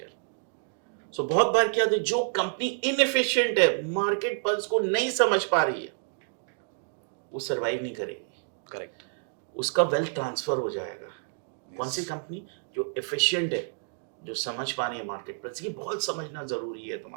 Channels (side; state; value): left; silent; digital silence